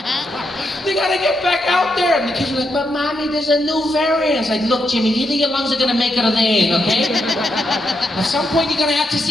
They gotta get back out there. And the kids are like, but mommy, there's a new variant. It's like, look, Jimmy, either your lungs are gonna make it or they ain't, okay? At some point, you're gonna have to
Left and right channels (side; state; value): both; normal; correlation 0.82